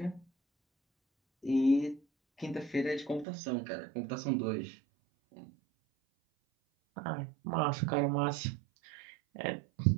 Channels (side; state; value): left; drops out; at 3.2 s